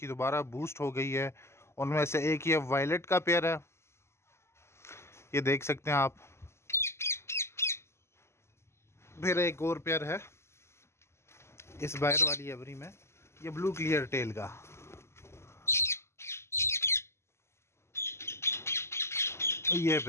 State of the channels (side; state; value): right; late; 0.13 ms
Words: दोबारा बूस्ट हो गई है। उनमें से एक ये वायलेट का पेयर है, ये देख सकते हैं आप। फिर एक और पेयर है इस बाहर वाली एवरी में, ये ब्लू क्लियर टेल का। ये